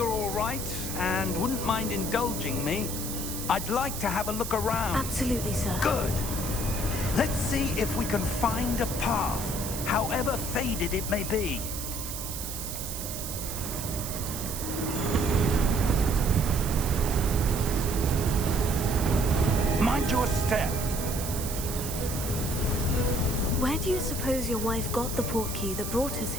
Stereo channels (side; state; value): right; noise; hiss, 6 dB below the sound